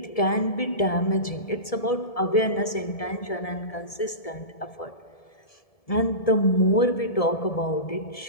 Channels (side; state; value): right; late; 1.7 ms